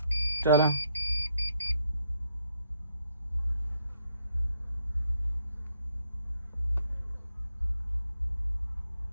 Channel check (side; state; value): both; inverted; correlation -0.74